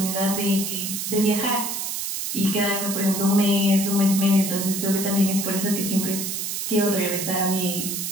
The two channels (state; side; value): noise; right; hiss, 3 dB below the sound